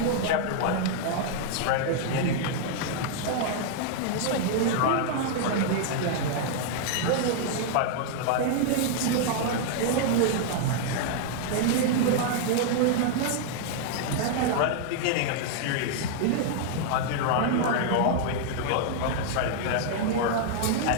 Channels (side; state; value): both; different; correlation 0.00